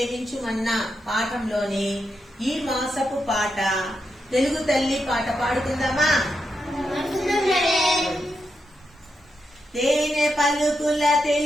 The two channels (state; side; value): normal; both; correlation 0.85